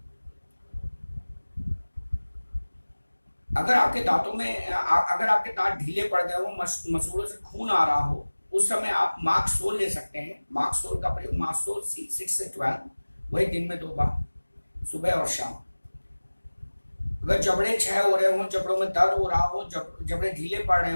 आपके दांतों में अगर आपके दांत ढीले पड़ गए हो, मसूड़ों से खून आ रहा हो, उस समय आप मार्क्सोल ले सकते हैं। मार्क्सोल का प्रयोग मार्क्सोल 6 से 12, वही दिन में 2 बार, सुबह और शाम। अगर जबड़े क्षय हो रहे हो, जबड़ों में दर्द हो रहा हो, जबड़े ढीले पड़ रहे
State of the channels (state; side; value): inverted; both; correlation -1.00